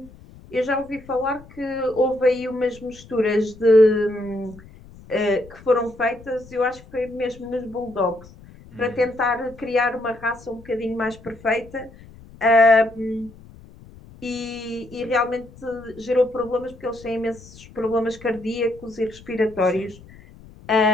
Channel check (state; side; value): noise; left; rumble, 21 dB below the sound